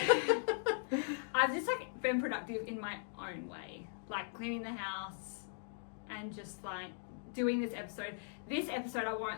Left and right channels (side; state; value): right; silent; digital silence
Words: I've just like been productive in my own way. Like cleaning the house and just like doing this episode. This episode, I